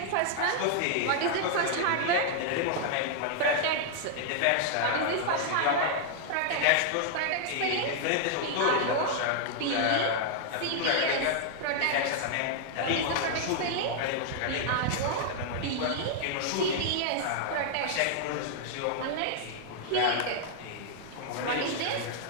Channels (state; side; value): different; both; correlation 0.00